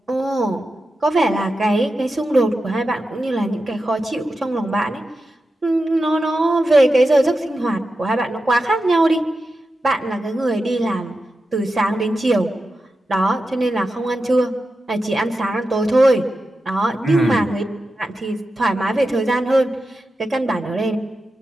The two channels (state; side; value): normal; both; correlation 0.91